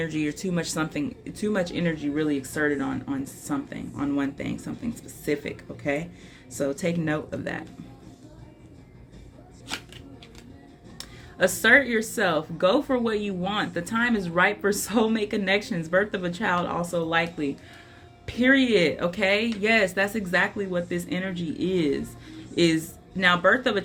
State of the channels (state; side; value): identical; both; correlation 1.00